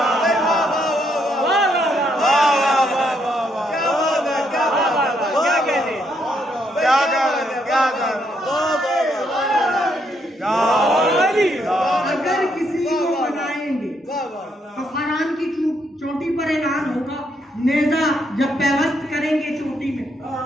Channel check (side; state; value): both; normal; correlation 0.75